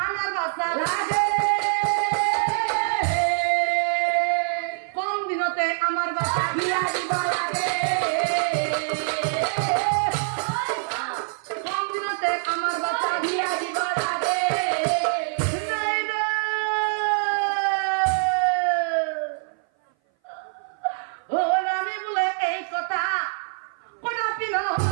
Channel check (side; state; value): left; silent; 58 dB below the other